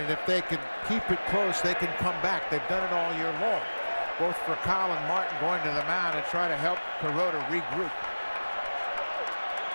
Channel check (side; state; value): both; inverted; correlation -1.00